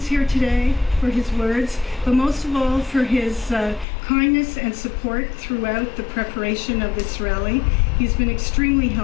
here today, for his words, but most of all for his kindness and support throughout the preparation of this rally. He's been extremely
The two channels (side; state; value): right; drops out; at 3.9 s